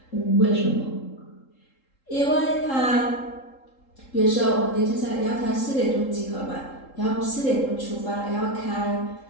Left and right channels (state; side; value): late; right; 3.8 ms